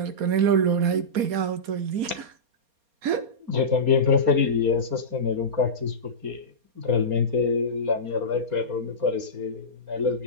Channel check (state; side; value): late; left; 4.3 ms